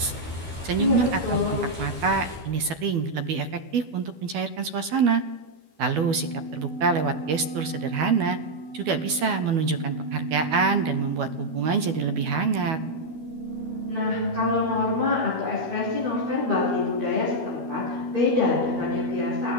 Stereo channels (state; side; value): late; left; 12 ms